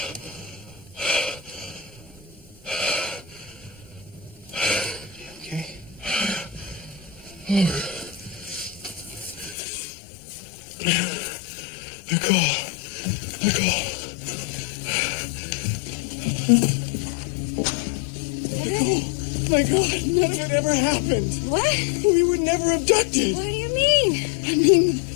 Okay. Nicole. My God, none of it ever happened. What? We were never abducted. What do you mean? I mean,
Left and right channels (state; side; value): drops out; right; at 9.6 s